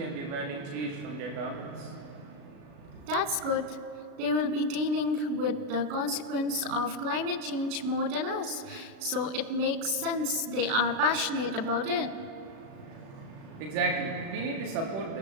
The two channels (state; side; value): late; left; 36 ms